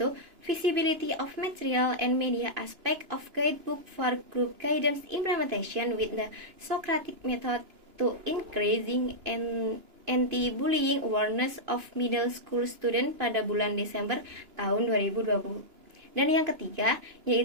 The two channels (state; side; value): late; left; 2.9 ms